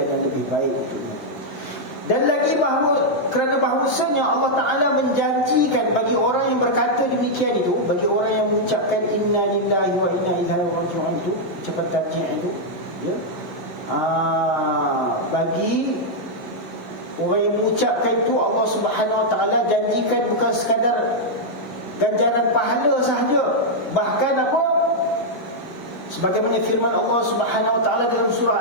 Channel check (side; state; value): both; normal; correlation -0.04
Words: yang lebih baik untuknya. Dan lagi bahawa kerana bahawasanya Allah Ta'ala menjanjikan bagi orang yang berkata demikian itu, bagi orang yang mengucapkan inna lillahi wa inna ilaihi raji'un itu, ucapan tarjih itu, ya, bagi orang yang mengucapkan itu, Allah Subhanahu Wa Ta'ala janjikan bukan sekadar ganjaran pahala sahaja, bahkan apa? Sebagaimana firman Allah Subhanahu Wa Ta'ala dalam